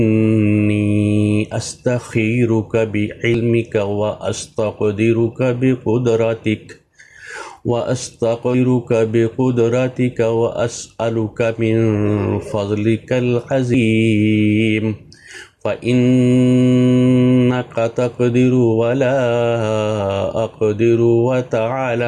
استخیرک بعلمک واستقدرک بقدرتک واسألک من فضلک العظیم فإنک تقدر ولا أقدر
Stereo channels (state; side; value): identical; both; correlation 1.00